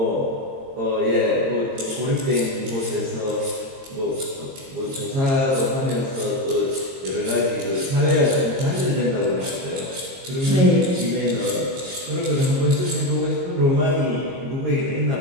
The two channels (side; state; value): left; late; 22 ms